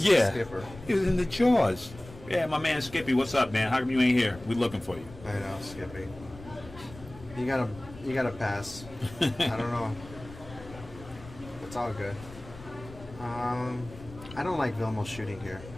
Yeah. skipper. He was in the jaws. Yeah, my man Skippy, what's up, man? How come you ain't here? We looking for you. I know, Skippy. You gotta pass. I don't know. It's all good. I don't like Vilmos shooting here.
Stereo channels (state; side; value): noise; left; rumble, 17 dB below the sound